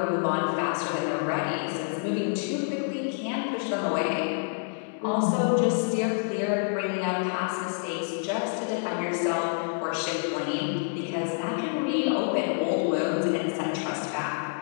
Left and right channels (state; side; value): silent; right; digital silence